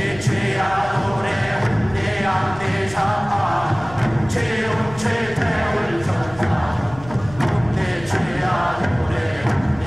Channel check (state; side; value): noise; left; rumble, 18 dB below the sound